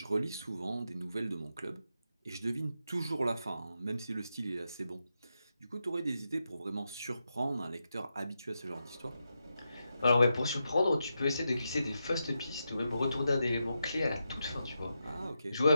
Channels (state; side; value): inverted; both; correlation -0.86